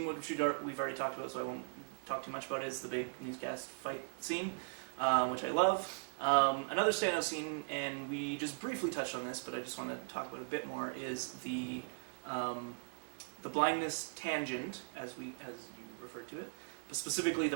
which we've already talked about, so I won't talk too much about it, is the big newscast fight scene, which I love. Another standout scene, and we just briefly touched on this, but I just want to talk about it a bit more, is the blindness tangent, as you referred to it, but specifically the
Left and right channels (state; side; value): silent; left; 52 dB below the other